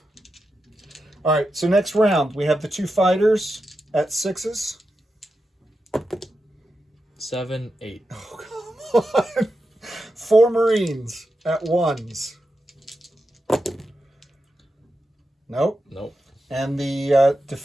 All right. So next round, we have the 2 fighters at 6s. 7, 8. Oh, come on. 4 Marines at 1s. Nope. Nope. And the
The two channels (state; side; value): normal; both; correlation 0.89